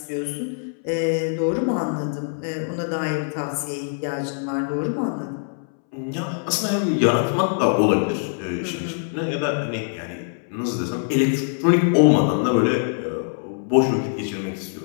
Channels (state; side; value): silent; right; 63 dB below the other